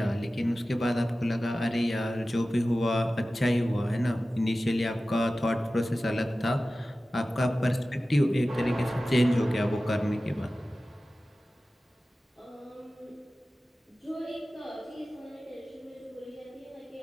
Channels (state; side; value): normal; both; correlation 0.95